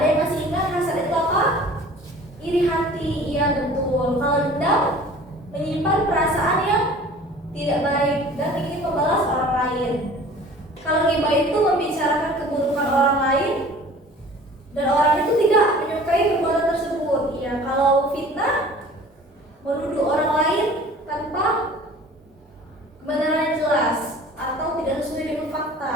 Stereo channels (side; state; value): both; normal; correlation 0.46